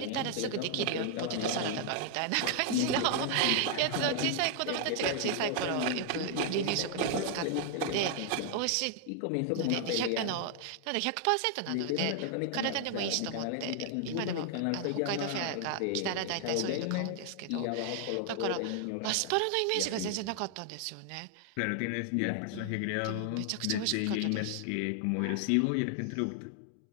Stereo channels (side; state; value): both; different; correlation 0.00